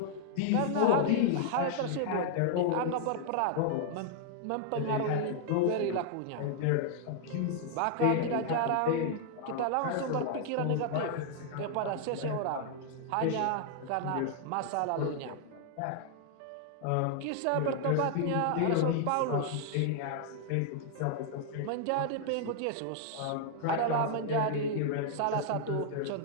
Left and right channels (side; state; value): both; different; correlation -0.01